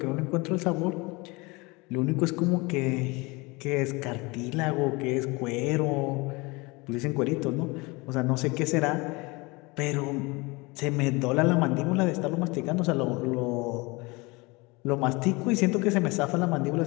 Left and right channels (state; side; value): quieter; right; 25.3 dB